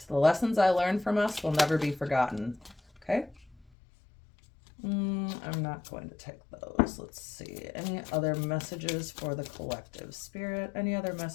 The lessons I learned from us will never be forgotten. Okay. I'm not going to take those. Let's see. Any other messages for the collective, Spirit? Any other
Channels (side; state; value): right; drops out; at 3.7 s